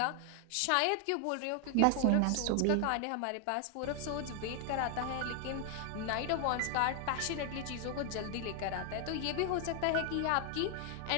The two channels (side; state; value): both; different; correlation 0.00